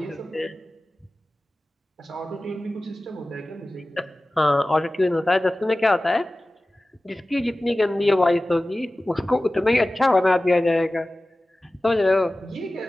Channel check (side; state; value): both; normal; correlation 0.96